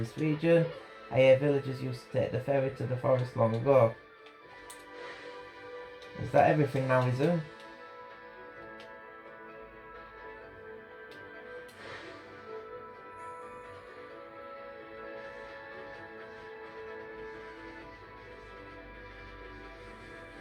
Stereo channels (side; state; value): both; identical; correlation 1.00